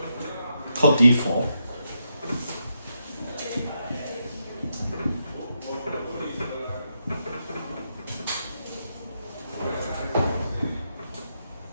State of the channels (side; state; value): both; inverted; correlation -0.82